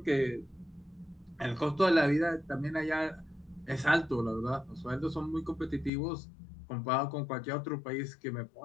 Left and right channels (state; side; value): drops out; right; at 5.9 s